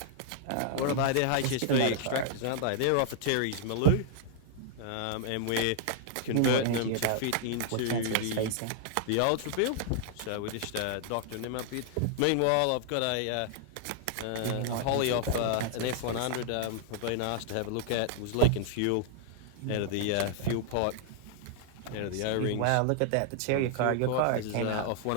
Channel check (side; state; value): both; different; correlation -0.01